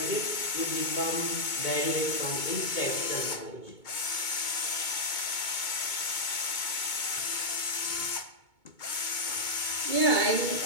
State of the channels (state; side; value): late; right; 2.2 ms